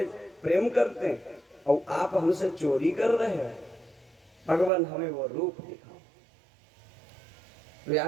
प्रेम करते हैं और आप हमसे चोरी कर रहे हैं, भगवान हमें वो रूप दिखाओ।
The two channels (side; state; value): left; drops out; at 4.7 s